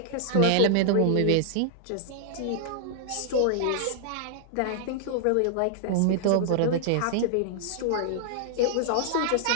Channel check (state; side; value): different; both; correlation -0.01